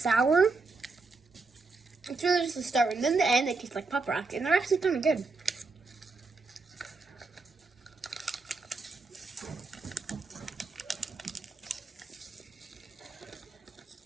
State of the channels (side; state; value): left; quieter; 3.9 dB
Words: It's really just the start, and then the end they taste like pop rock, and they're actually kind of good.